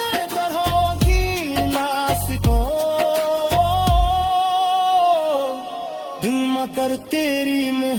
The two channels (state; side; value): identical; both; correlation 1.00